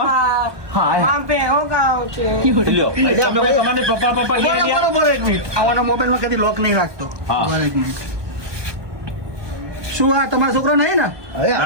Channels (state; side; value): late; left; 1.2 ms